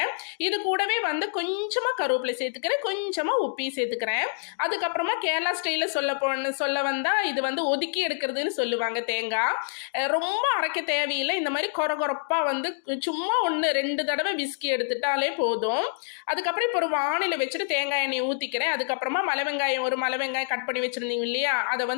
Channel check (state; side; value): silent; right; digital silence